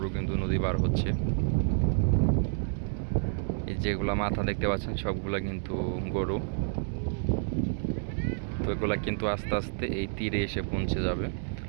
কিন্তু নদী পার হচ্ছে। এই যেগুলা মাথা দেখতে পাচ্ছেন সবগুলা কিন্তু গরু। তো এগুলা কিন্তু আস্তে আস্তে এই তীরে এসে পৌঁছে যাবে।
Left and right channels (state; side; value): silent; left; digital silence